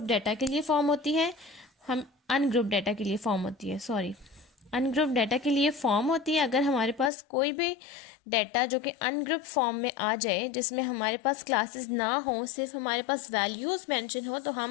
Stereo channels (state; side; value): drops out; right; at 7.1 s